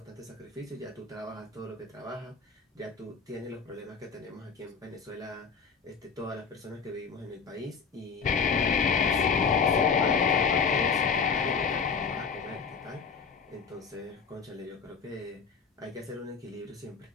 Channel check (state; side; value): quieter; right; 5.6 dB